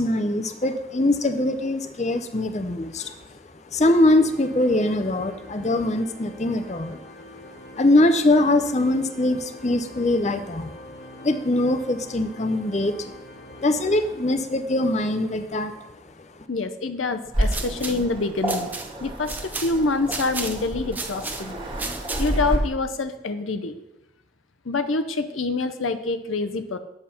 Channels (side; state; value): both; normal; correlation 0.56